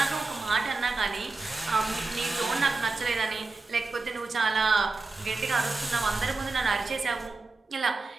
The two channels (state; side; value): quieter; left; 3.7 dB